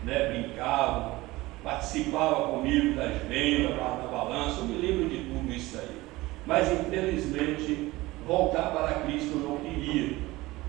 né, brincavam, participavam comigo das vendas, da balança, eu me lembro de tudo isso aí. Mas infelizmente, voltar para Cristo eu não queria,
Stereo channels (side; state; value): left; quieter; 19.7 dB